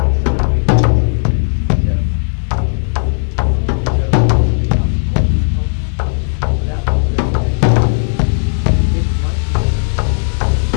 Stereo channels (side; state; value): right; silent; digital silence